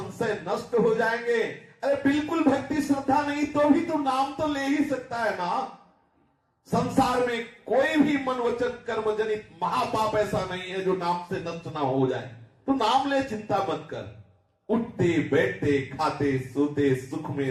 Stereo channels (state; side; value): identical; both; correlation 1.00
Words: नष्ट हो जाएंगे। अरे बिल्कुल भक्ति श्रद्धा नहीं तो भी तो नाम तो ले ही सकता है ना। संसार में कोई भी मन वचन कर्म जनित महापाप ऐसा नहीं है जो नाम से नष्ट ना हो जाए। तो नाम ले, चिंता मत कर। उठते बैठते खाते सोते, सुख